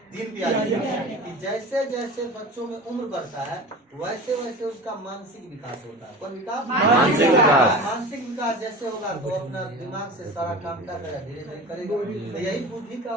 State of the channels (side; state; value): both; normal; correlation 0.33